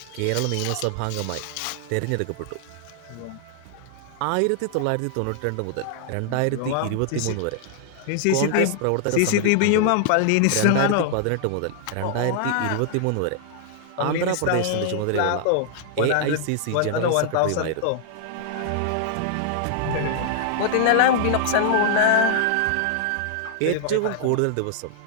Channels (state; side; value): different; both; correlation 0.00